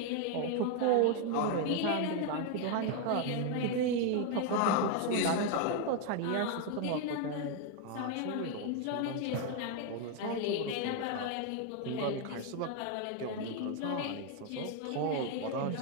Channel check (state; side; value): different; both; correlation 0.01